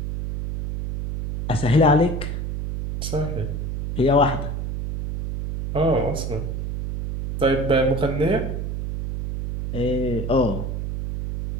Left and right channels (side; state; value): right; noise; hum, 4 dB below the sound